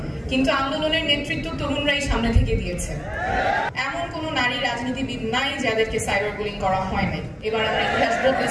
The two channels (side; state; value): both; identical; correlation 1.00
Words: কিন্তু আন্দোলনের নেতৃত্ব তরুণরাই সামনে থেকে দিয়েছে। এমন কোন নারী রাজনীতিবিদ নাই যাদেরকে সাইবার বুলিং করা হয় নাই। এবার আমরা ইতিহাস